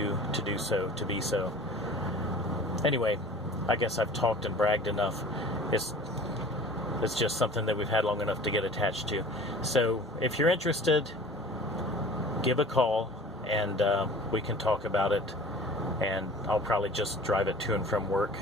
to do so, to be so. Anyway, I guess I've talked and bragged enough. It's just something that we've had long enough to get attached to. So if you're interested, give a call, and we can talk about it. And I'll probably just drive it to and from work,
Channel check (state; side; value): normal; both; correlation 0.44